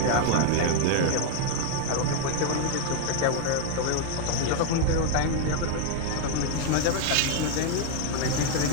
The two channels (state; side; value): different; both; correlation 0.00